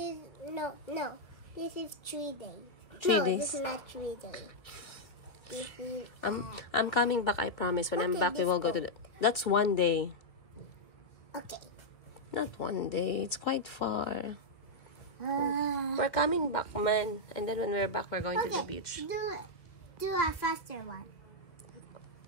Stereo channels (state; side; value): late; right; 1.7 ms